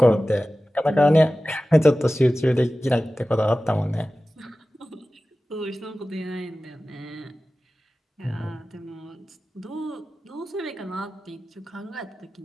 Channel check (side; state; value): both; normal; correlation 0.96